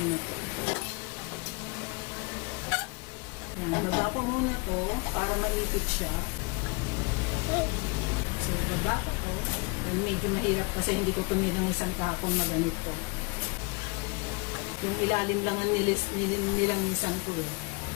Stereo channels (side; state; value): right; quieter; 30.1 dB